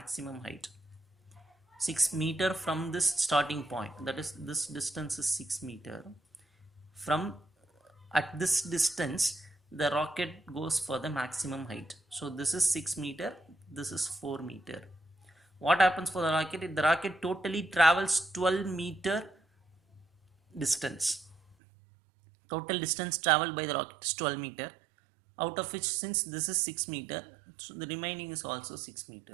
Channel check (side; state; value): left; drops out; at 21.6 s